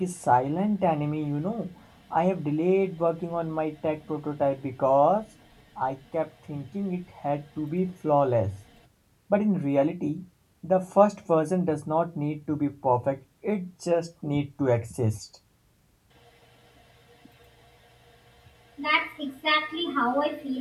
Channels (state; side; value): identical; both; correlation 1.00